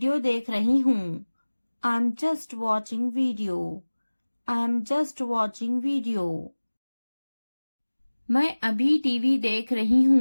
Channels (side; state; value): both; inverted; correlation -1.00